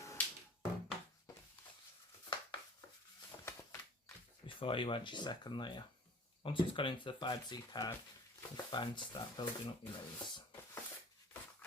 Before you add your second layer. Once it's gone into the fibres of your card, it's fine to start building up your layers.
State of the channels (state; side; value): normal; both; correlation 0.46